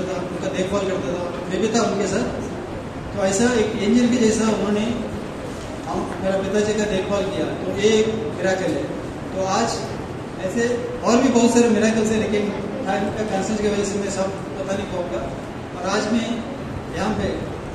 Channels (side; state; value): both; identical; correlation 1.00